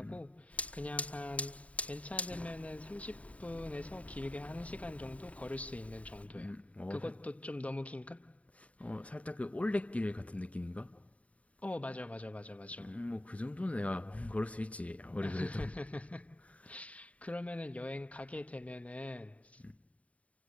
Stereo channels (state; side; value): late; right; 0.067 ms